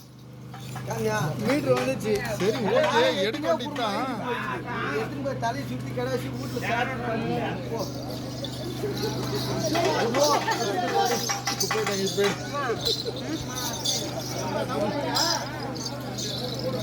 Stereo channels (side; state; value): both; identical; correlation 1.00